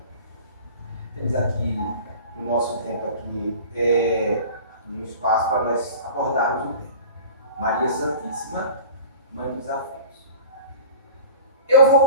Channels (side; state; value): both; inverted; correlation -0.41